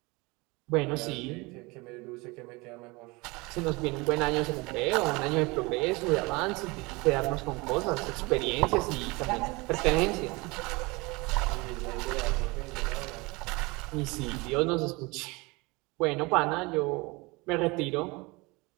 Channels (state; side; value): quieter; left; 25.0 dB